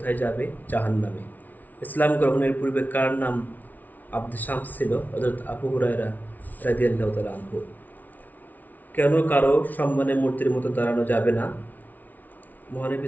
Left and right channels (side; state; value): right; late; 0.079 ms